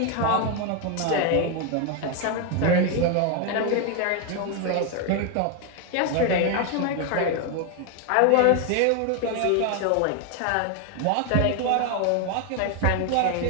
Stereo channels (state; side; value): different; both; correlation 0.01